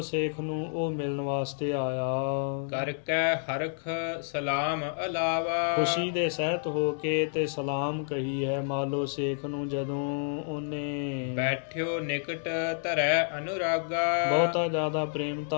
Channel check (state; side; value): silent; right; digital silence